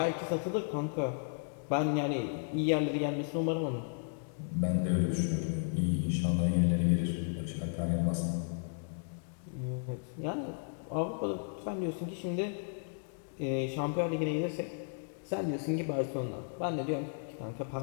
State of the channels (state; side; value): silent; right; digital silence